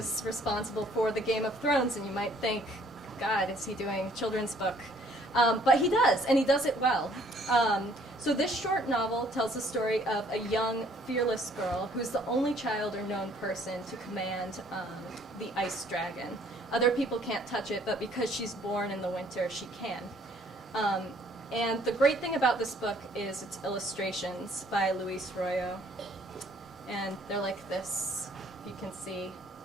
responsible for the Game of Thrones, and you might think, God, is he doing a children's book? But he does, and he does it well. So this short novel tells the story of a young, fearless girl who's the only child or known person to command the ice dragon. Other people can't touch it, but because she's born in the winter, she can. And the great thing about this book is its illustrations by Luis Royo. And they're like this, if you can see.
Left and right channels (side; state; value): both; normal; correlation 0.61